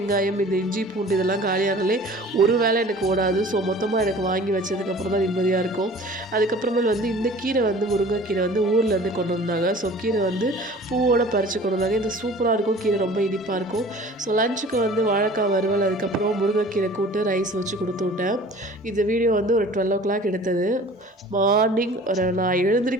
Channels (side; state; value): both; normal; correlation 0.46